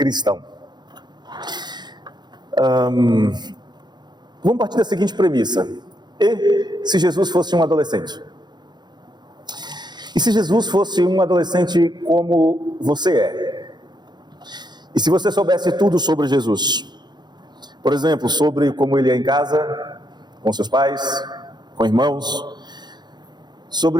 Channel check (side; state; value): left; late; 0.21 ms